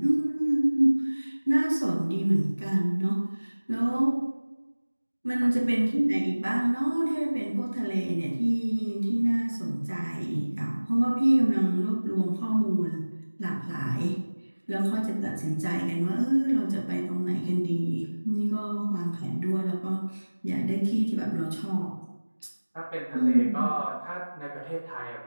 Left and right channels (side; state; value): both; inverted; correlation -1.00